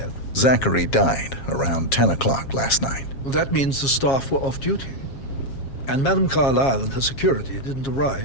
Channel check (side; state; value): right; late; 7.4 ms